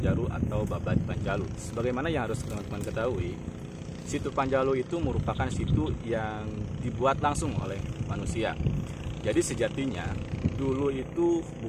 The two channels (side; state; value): both; identical; correlation 1.00